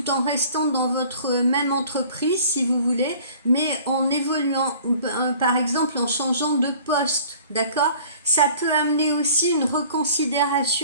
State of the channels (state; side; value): inverted; both; correlation -0.49